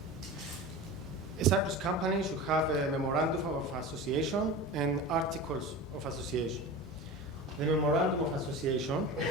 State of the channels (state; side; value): normal; both; correlation 0.30